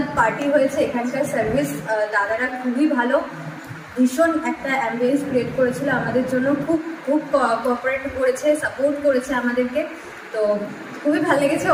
পার্টি হয়েছে। এখানকার সার্ভিস দাদারা খুবই ভালো, ভীষণ একটা অ্যাম্বিয়েন্স ক্রিয়েট করেছিল আমাদের জন্য, খুব খুব কোঅপারেট করেছে, সাপোর্ট করেছে আমাদেরকে। তো খুবই ভালো লেগেছে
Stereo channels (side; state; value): both; identical; correlation 1.00